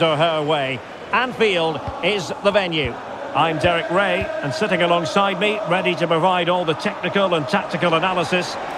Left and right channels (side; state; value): both; identical; correlation 1.00